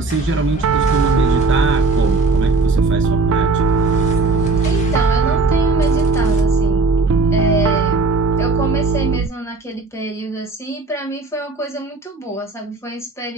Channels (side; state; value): left; quieter; 3.8 dB